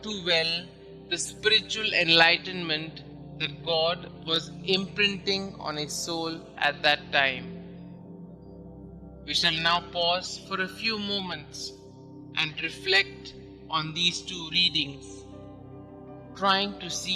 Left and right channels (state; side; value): identical; both; correlation 1.00